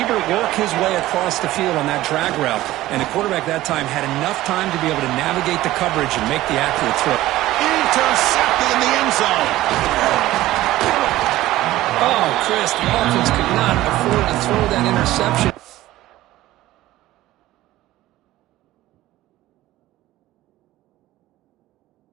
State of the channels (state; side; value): quieter; left; 16.0 dB